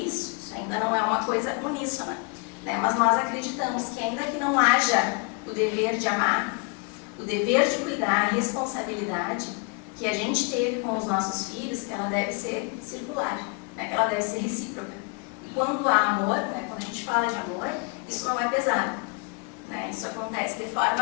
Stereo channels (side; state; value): right; quieter; 31.4 dB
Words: Isso ainda não é uma coisa uníssona. Né, mas nós acreditamos que ainda que não haja o dever de amar, o dever de cuidar, a responsabilidade que a gente teve com os nossos filhos, ela deve ser circular, né? Ela deve ser recíproca. E quando há amor, né? Quando a gente fala de amor, isso não é pesado. Né? Isso acontece de